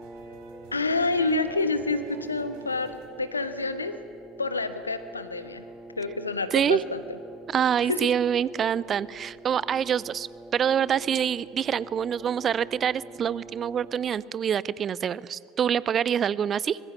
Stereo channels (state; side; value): quieter; left; 4.2 dB